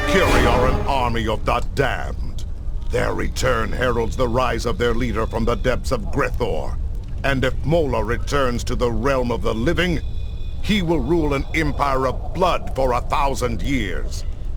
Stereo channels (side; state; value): both; identical; correlation 1.00